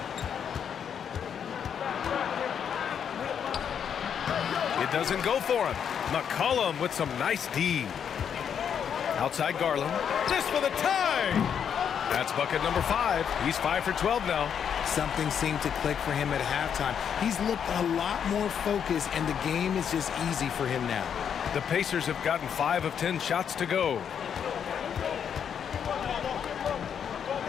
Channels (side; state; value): right; quieter; 8.0 dB